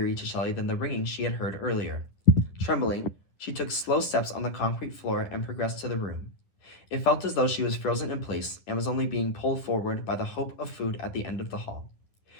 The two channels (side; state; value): right; late; 10 ms